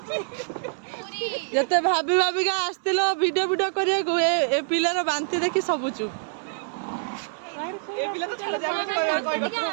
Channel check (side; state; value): left; silent; digital silence